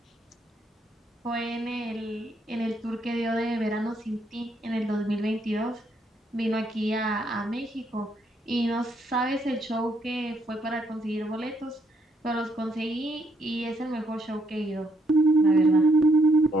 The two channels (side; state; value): both; normal; correlation 0.73